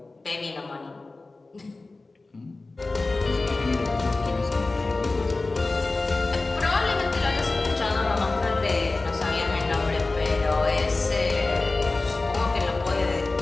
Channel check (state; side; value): quieter; right; 3.3 dB